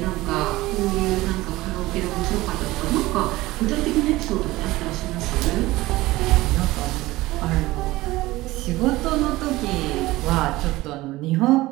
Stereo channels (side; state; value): left; quieter; 18.6 dB